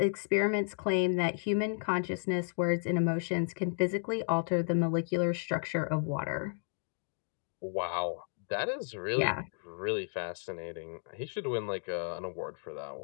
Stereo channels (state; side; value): silent; right; digital silence